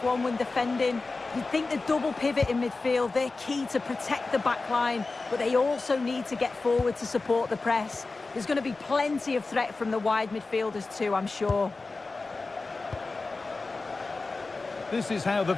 when defending. You'd think the double pivot in midfield, they're key to protect the back line, but they also need to get forward to support the press. There's going to be plenty of threat from the wide midfielders too, I'm sure. This is how the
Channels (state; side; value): quieter; right; 3.7 dB